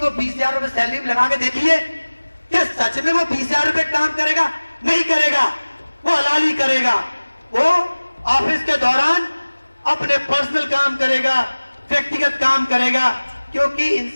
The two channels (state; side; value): inverted; both; correlation -1.00